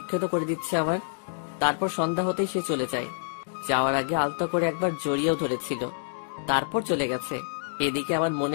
করে দিচ্ছে আমার। তারপর সন্ধ্যা হতেই সে চলে যায়। যাওয়ার আগে আলতো করে একবার জড়িয়েও ধরেছিল, তারপর চলে গেছে। এদিকে আমার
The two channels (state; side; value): silent; right; digital silence